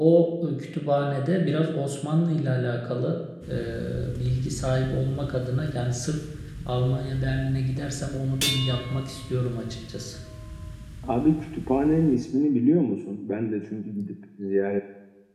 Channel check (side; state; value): both; identical; correlation 1.00